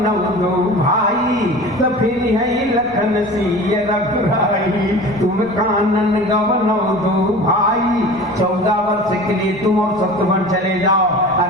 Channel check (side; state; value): left; noise; rumble, 25 dB below the sound